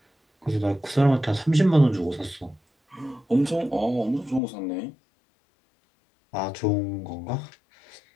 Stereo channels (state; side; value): drops out; right; at 4.4 s